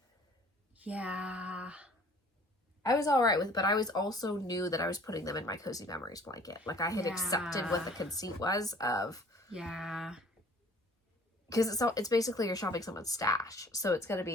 yeah. I was all right with it, but I was also knew that I was putting them in my Cozy Memories blanket. Like, I had accepted what the conceit was of... Yeah. Because it's basically you're shopping someone's stash, so it's going to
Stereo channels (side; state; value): both; normal; correlation 0.52